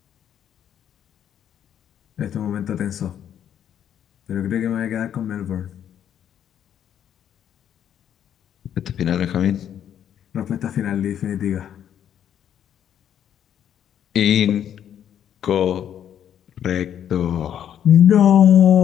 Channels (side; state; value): right; quieter; 9.7 dB